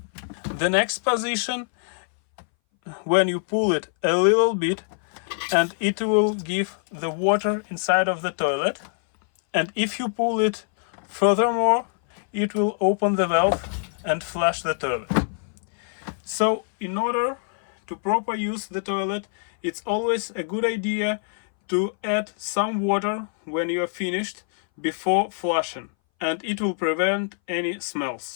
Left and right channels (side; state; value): right; silent; 61 dB below the other